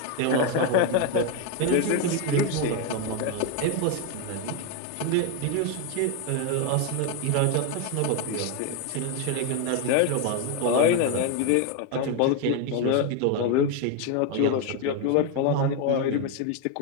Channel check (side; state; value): both; different; correlation 0.01